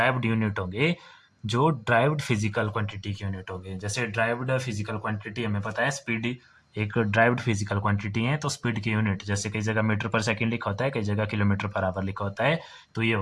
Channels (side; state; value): both; identical; correlation 1.00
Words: यूनिट होंगे जो ड्राइव्ड फिजिकल क्वांटिटी की यूनिट होंगे। जैसे ड्राइव्ड फिजिकल क्वांटिटी हमें पता है स्पीड एक ड्राइव्ड फिजिकल क्वांटिटी है, तो स्पीड की यूनिट जैसे कई जगह मीटर पर सेकंड लिखा होता है, कई जगह किलोमीटर पर आवर लिखा होता है, तो ये